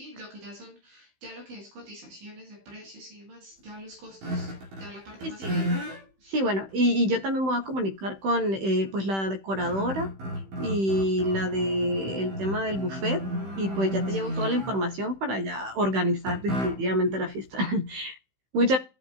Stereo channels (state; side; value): late; left; 15 ms